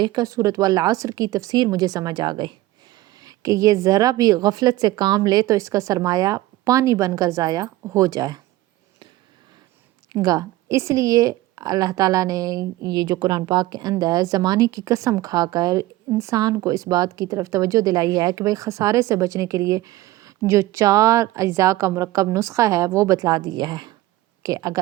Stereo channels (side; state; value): left; quieter; 16.9 dB